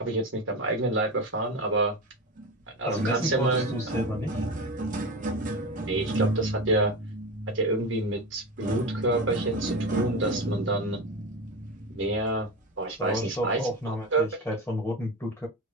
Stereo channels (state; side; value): normal; both; correlation 0.23